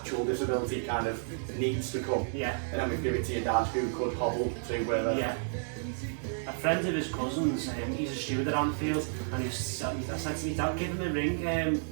disability kind of needs to come. Yeah. And then we give it to your dad who could hobble to where they're... Yeah. A friend of his cousin's, he's a steward at Anfield, and I said to me, Dad, give him a ring.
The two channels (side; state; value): left; silent; digital silence